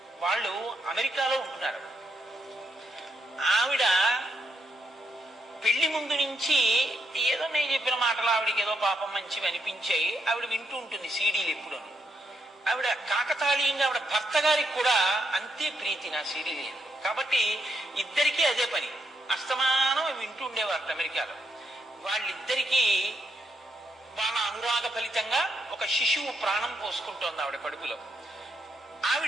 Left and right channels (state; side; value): normal; both; correlation 0.79